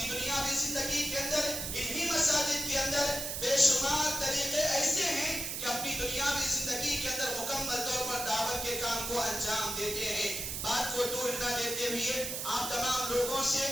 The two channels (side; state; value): right; noise; hiss, 4 dB below the sound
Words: دنیاوی زندگی کے اندر انہی مساجد کے اندر بے شمار طریقے ایسے ہیں کہ اپنی دنیاوی زندگی کے اندر مکمل طور پر دعوت کے کام کو انجام دیتے ہیں۔ بات کو دور نہ دیتے ہوئے آپ تمام لوگوں سے